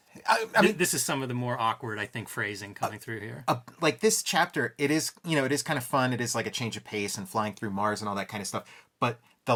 I mean, this is some of the more awkward, I think, phrasing coming through here. Like this chapter, it is kind of fun. It is like a change of pace and flying through Mars and all that kind of stuff. But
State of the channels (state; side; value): identical; both; correlation 1.00